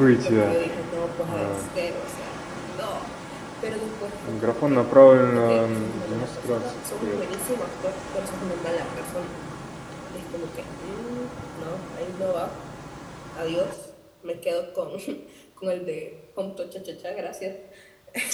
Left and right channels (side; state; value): both; identical; correlation 1.00